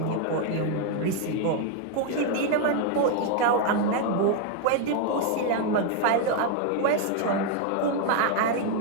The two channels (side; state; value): both; different; correlation 0.00